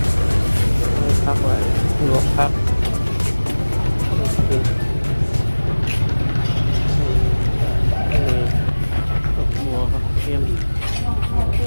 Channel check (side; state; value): both; inverted; correlation -1.00